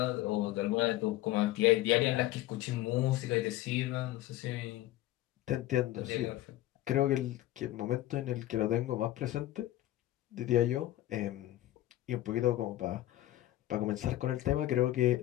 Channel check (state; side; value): quieter; right; 15.4 dB